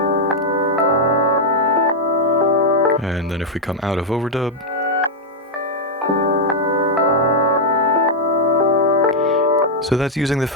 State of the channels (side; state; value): both; normal; correlation -0.03